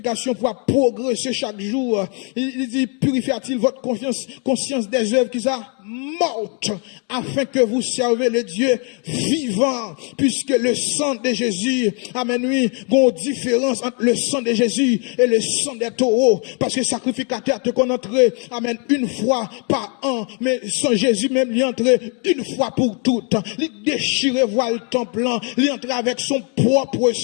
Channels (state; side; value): quieter; right; 37.4 dB